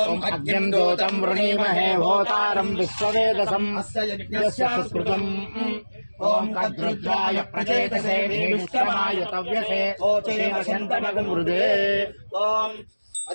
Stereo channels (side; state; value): both; inverted; correlation -1.00